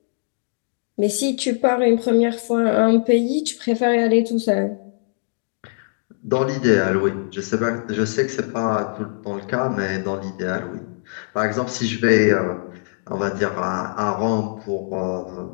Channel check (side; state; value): right; silent; digital silence